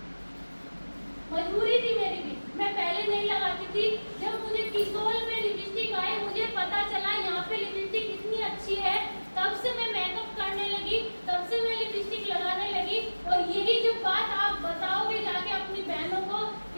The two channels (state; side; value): inverted; both; correlation -1.00